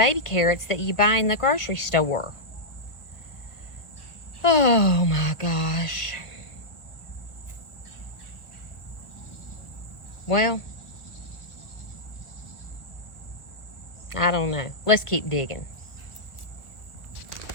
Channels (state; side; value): late; right; 1.4 ms